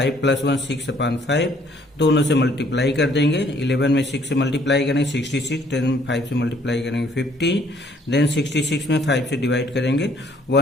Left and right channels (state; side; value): normal; both; correlation 0.63